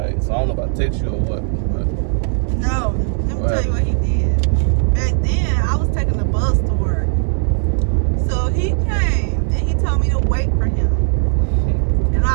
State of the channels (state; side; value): silent; left; 65 dB below the other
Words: So I don't know if I text you or what, but No, let me tell you what he did. Back then, I was taking the bus to work. So he came and he told me to wait for him. And